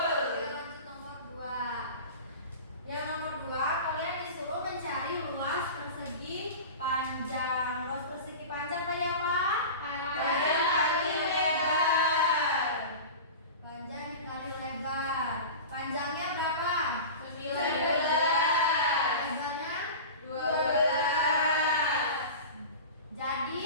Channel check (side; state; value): both; inverted; correlation -0.32